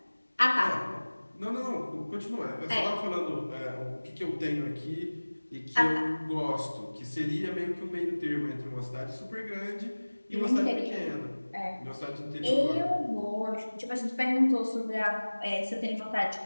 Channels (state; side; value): inverted; both; correlation -1.00